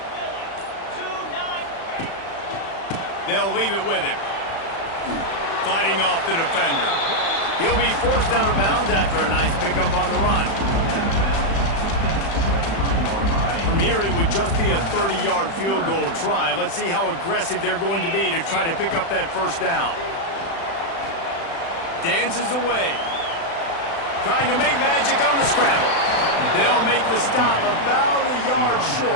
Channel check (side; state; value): right; late; 36 ms